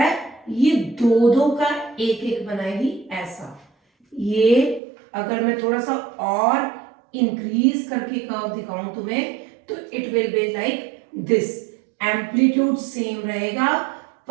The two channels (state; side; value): drops out; left; at 4.8 s